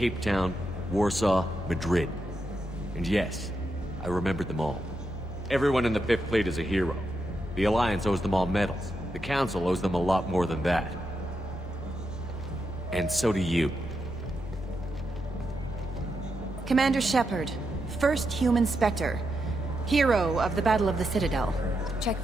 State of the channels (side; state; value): both; normal; correlation 0.84